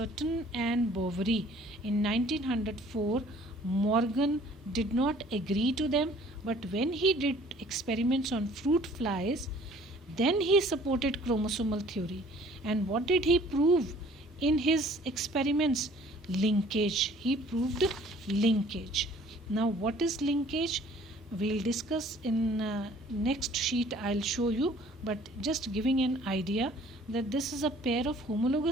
and Boveri in 1904, Morgan did not agree to them, but when he did experiments on fruit flies, then he supported chromosomal theory. And what did he prove in his experiments? Linkage. He proved linkage. Now, what is linkage? We'll discuss in next sheet. I'll show you, but just giving an idea that this is a pair of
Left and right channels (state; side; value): normal; both; correlation 0.54